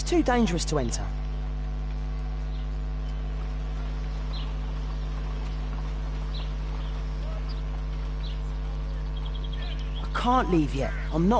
too dangerous to enter. I can't leave yet. I'm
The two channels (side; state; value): both; identical; correlation 1.00